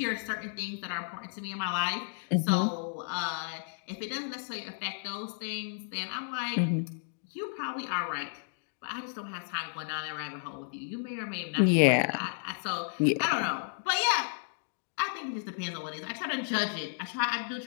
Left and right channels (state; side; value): silent; right; digital silence